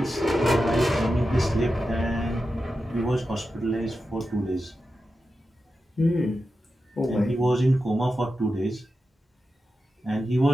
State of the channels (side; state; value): both; normal; correlation 0.91